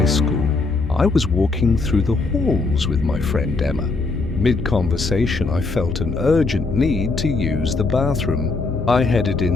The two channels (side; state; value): right; quieter; 3.7 dB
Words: school, I was walking through the halls with my friend Emma. Mid-conversation, I felt an urgent need to use the bathroom. I headed